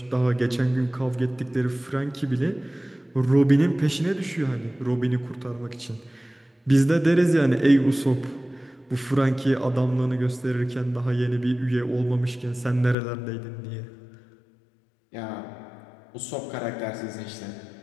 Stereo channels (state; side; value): drops out; right; at 13.0 s